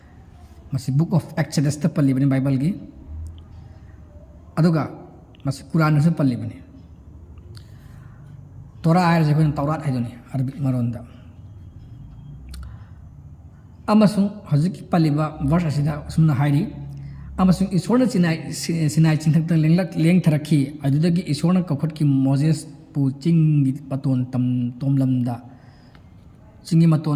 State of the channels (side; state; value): both; identical; correlation 1.00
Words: मसी बुक ऑफ एक्सोडस ता पल्लिबनी बाइबल की अदुगा मसी कुरान से पल्लिबनी तोरा आयर जे कोन तौरात हाइदोनी अरबिक मरोंदा अमसुंग हजिकी पल्लिबा वर्ष असिदा सुमना हाइरी अमसुंग ईश्वरना सिनाई चिंथक्ता लेंग थरखी अदुदगी ईश्वरना कखुटकी मोजेस पु चिंगी पतोन तम तोमलमदा चिंगी